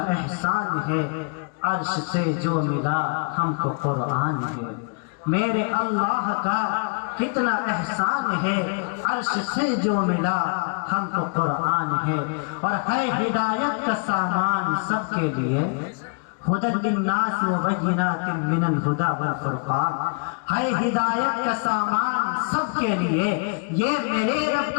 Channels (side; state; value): right; quieter; 39.2 dB